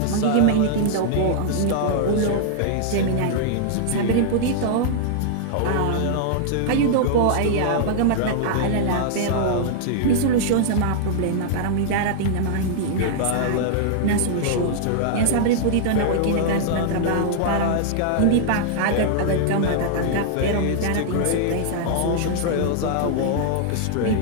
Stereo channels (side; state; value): both; different; correlation -0.01